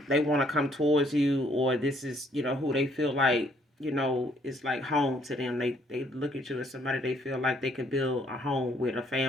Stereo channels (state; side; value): normal; both; correlation 0.66